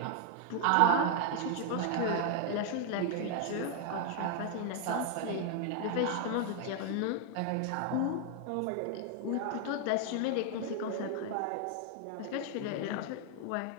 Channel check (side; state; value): both; different; correlation 0.00